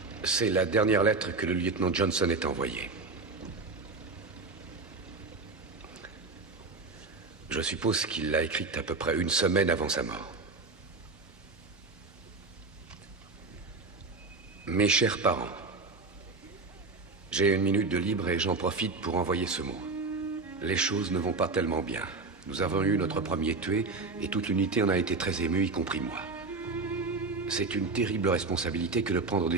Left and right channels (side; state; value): left; quieter; 3.8 dB